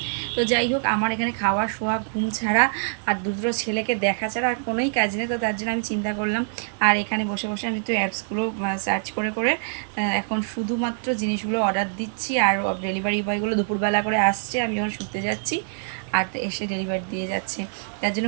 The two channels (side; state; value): left; silent; digital silence